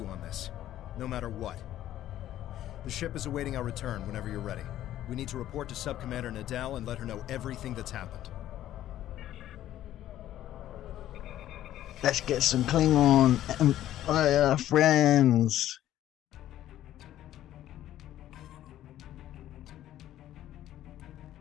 on this, no matter what. The ship is awaiting our return whenever you're ready. We need to report to Subcommander Nadell and let her know everything that's happened. Let's get some Klingon Empire friends.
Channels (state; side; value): quieter; right; 12.8 dB